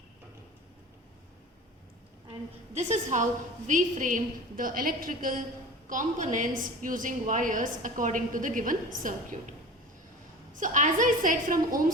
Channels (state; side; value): normal; both; correlation 0.36